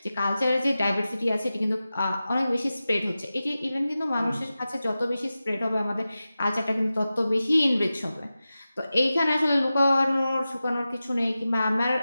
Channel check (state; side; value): inverted; both; correlation -0.94